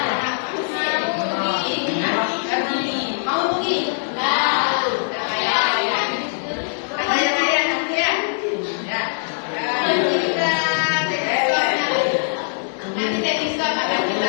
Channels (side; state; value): right; silent; 65 dB below the other